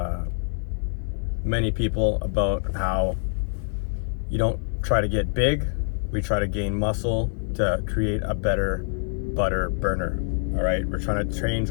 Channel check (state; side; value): silent; right; 61 dB below the other